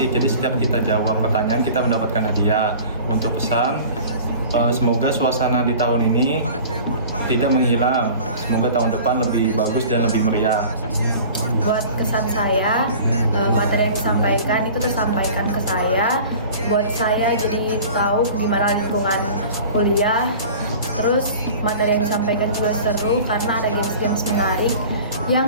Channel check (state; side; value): inverted; both; correlation -0.42